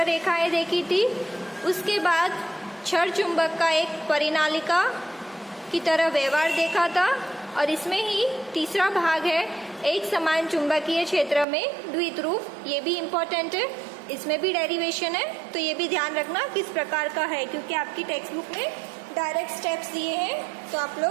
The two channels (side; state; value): left; drops out; at 11.5 s